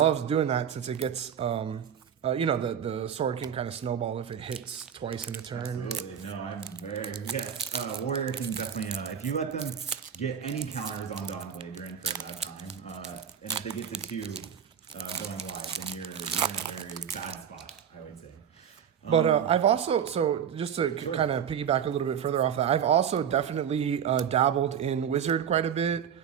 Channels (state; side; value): quieter; left; 8.3 dB